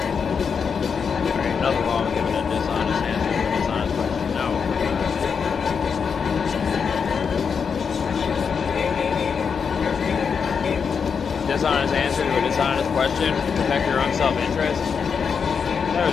There ain't nothing wrong with giving a dishonest answer to a dishonest question. No. Dishonest answer to a dishonest question, protect your own self-interest. There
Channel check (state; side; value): quieter; right; 6.2 dB